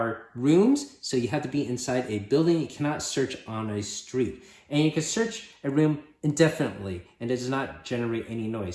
rooms, so you have to be inside a building. You cannot search on a street. And you can search a room indefinitely, and it does not generate any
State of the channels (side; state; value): both; identical; correlation 1.00